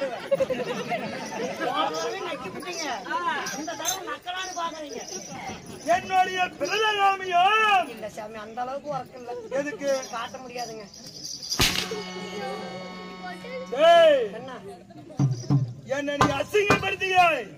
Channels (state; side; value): identical; both; correlation 1.00